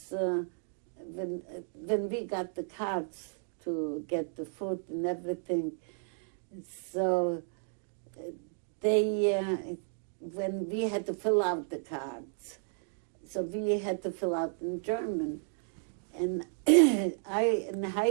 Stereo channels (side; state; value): left; silent; digital silence